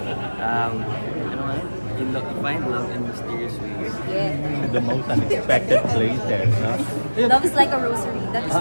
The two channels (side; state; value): both; inverted; correlation -1.00